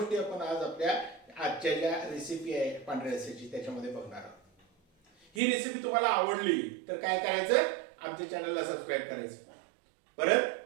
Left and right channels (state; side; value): drops out; left; at 5.4 s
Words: आपण आज आपल्या आजच्या ज्या रेसिपी आहे पांढऱ्या रस्स्याची त्याच्यामध्ये बघणार आहोत। ही रेसिपी तुम्हाला आवडली तर काय करायचं, आमच्या चॅनलला सबस्क्राईब करायचं। परत